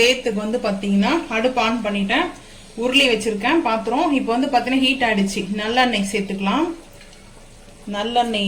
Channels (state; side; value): identical; both; correlation 1.00